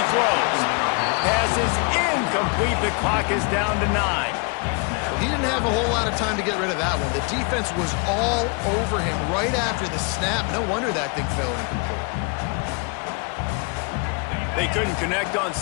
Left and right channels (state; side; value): quieter; right; 33.4 dB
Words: throws. Pass is incomplete. The clock is down to 9. He didn't have a whole lot of time to get rid of that one. The defense was all over him right after the snap. No wonder that thing fell incomplete. They couldn't connect on